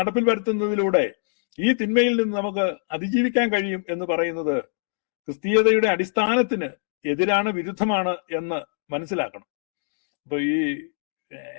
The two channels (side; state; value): right; silent; 62 dB below the other